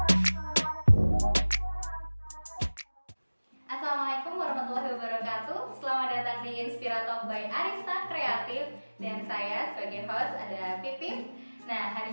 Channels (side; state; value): both; inverted; correlation -1.00